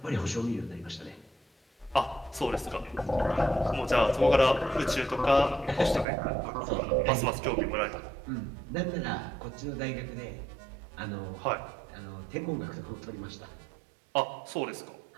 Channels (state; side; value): drops out; left; at 6.1 s